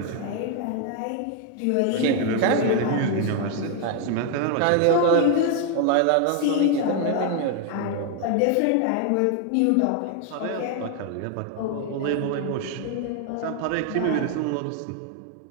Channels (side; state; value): both; different; correlation 0.00